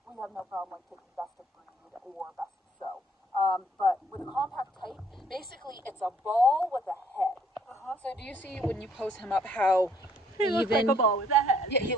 we have no problem like taking best of breed or best of show. But with a compact type, basically it's a ball with a head. So do you see when you pose him up how He looks like a ball with a head. Yeah, he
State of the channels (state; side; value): normal; both; correlation 0.63